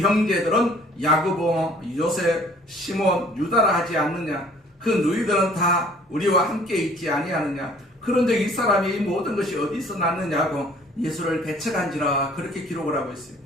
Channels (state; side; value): normal; both; correlation 0.54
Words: 야고보, 요셉, 시몬, 유다라 하지 않느냐? 그 누이들은 다 우리와 함께 있지 아니하느냐? 그런데 이 사람이 이 모든 것이 어디서 났느냐고 예수를 배척한지라 그렇게 기록을 하고 있어요.